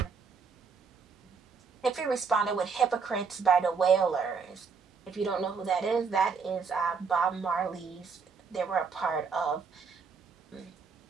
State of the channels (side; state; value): left; quieter; 5.4 dB